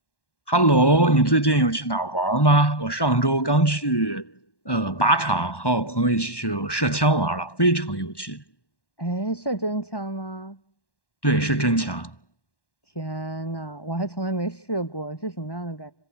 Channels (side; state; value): right; late; 1.1 ms